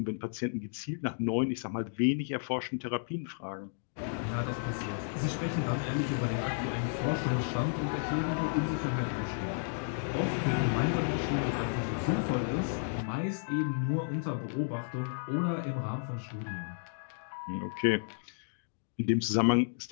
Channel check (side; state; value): right; silent; digital silence